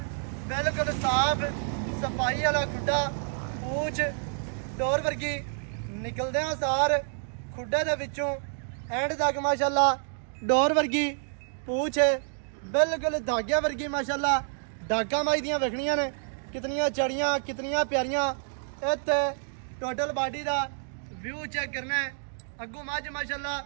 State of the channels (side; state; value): left; silent; 59 dB below the other